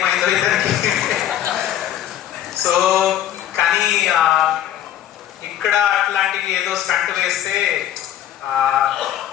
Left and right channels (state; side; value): quieter; right; 11.5 dB